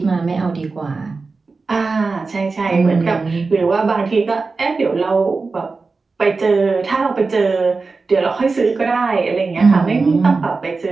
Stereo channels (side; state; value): left; quieter; 4.1 dB